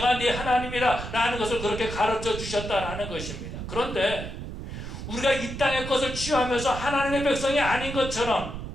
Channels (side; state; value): right; noise; rumble, 8 dB below the sound